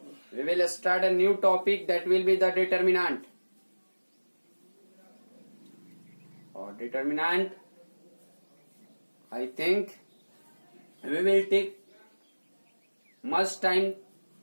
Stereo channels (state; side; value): inverted; both; correlation -1.00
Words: we will start a new topic that will be the determinant. Or determinant, I think we will take much time